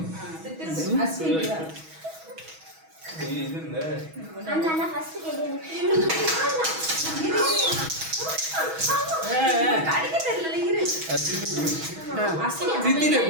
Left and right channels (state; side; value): late; left; 6.2 ms